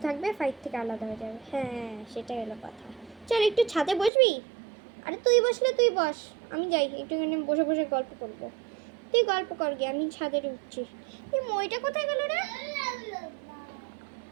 থাকবে, 5 থেকে আলাদা হয়ে যাবে। হ্যাঁ, সেটাই হলো কথা। চল একটু ছাদে বসবি? আরে তুই বসলে তুই বস, আমি যাই একটুখানি বসে বসে গল্প করবো। তুই গল্প কর গিয়ে, আমি ছাদে উঠছি। এই মইটা কোথায় গেল রে?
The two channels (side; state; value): left; drops out; at 4.1 s